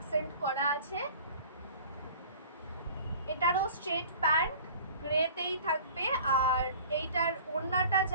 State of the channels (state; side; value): inverted; both; correlation -0.45